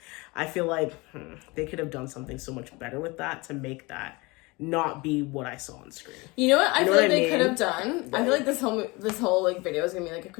I feel like they could have done something so much better with that to make that not be what I saw on screen. You know what I feel like they could have done? Right. I feel like this whole like video is gonna be like a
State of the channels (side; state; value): right; quieter; 24.7 dB